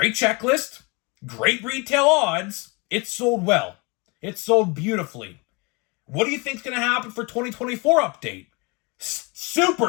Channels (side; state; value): right; quieter; 28.8 dB